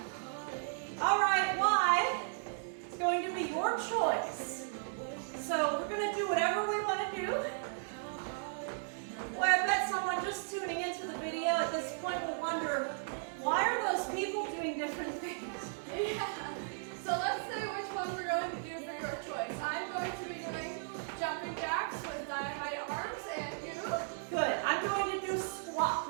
All right, why? It's going to be your choice. So we're going to do whatever we want to do. Boy, I bet someone just tuning into the video at this point will wonder, why are those people doing different things? Yeah. So let's see which one we're going to do for your choice. I'm going to be doing jumping jacks with dynamite arms, and you? Good. I'm going to do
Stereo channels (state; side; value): silent; left; digital silence